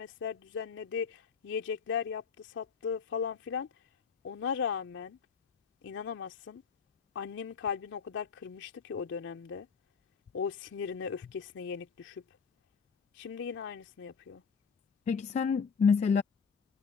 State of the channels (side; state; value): right; quieter; 5.9 dB